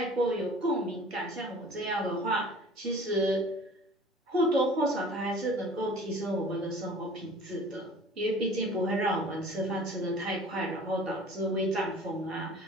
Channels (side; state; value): both; normal; correlation 0.46